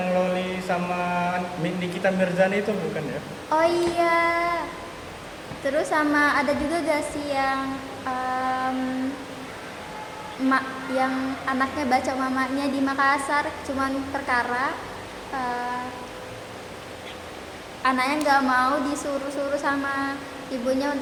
Loli sama Nikita Mirzani itu bukan ya? Oh iya. Terus sama ada juga gak sih yang yang anaknya baca mamanya di Makassar, cuman perkara anaknya nggak mau disuruh-suruh sama ibunya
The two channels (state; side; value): identical; both; correlation 1.00